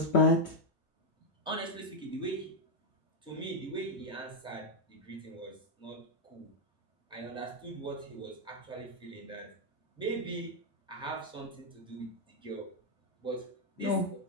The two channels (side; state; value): both; normal; correlation 0.00